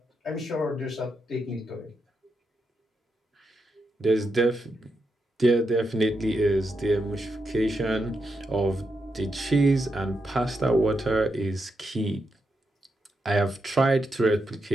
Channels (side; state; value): both; normal; correlation 0.84